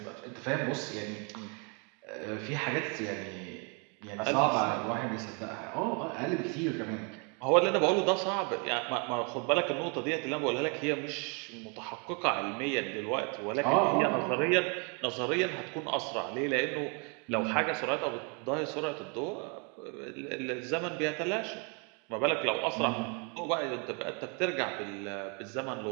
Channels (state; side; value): quieter; left; 35.2 dB